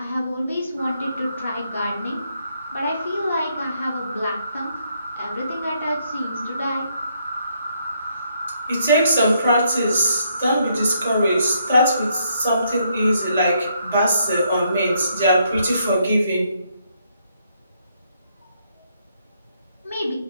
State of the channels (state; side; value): inverted; both; correlation -0.73